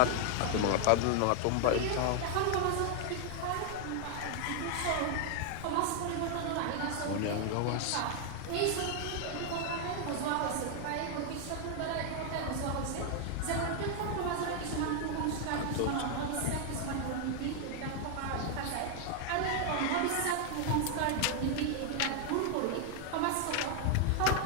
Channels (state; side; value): different; both; correlation 0.00